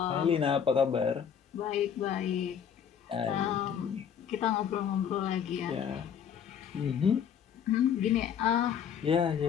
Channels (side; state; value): right; quieter; 8.1 dB